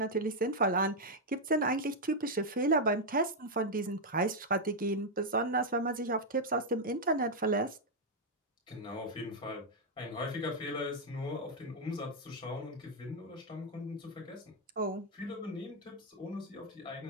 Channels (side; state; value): both; normal; correlation -0.01